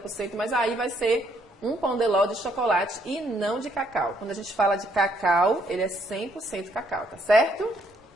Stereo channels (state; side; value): normal; both; correlation 0.70